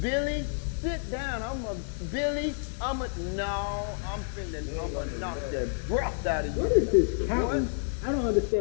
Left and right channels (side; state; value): right; silent; 58 dB below the other